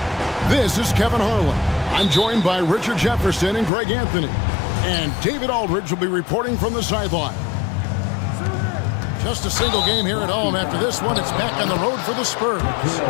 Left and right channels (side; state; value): right; drops out; at 3.7 s